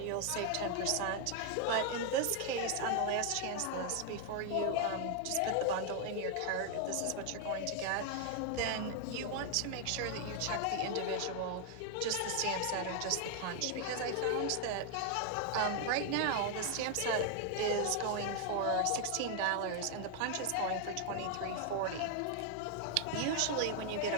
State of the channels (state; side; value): different; both; correlation 0.00